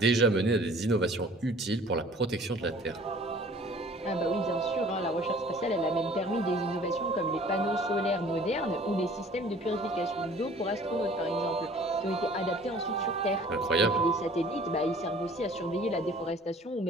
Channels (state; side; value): normal; both; correlation 0.51